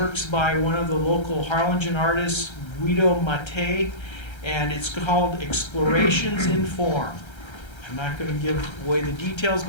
by one of the local Harlingen artists, Guido Mattei, and it's called Explorations in Form. I'm not going to give away the details,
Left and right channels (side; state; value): right; late; 1.3 ms